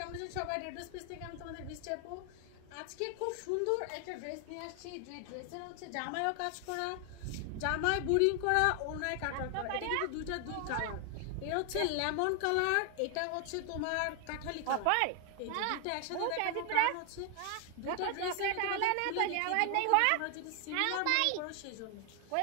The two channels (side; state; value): both; different; correlation 0.00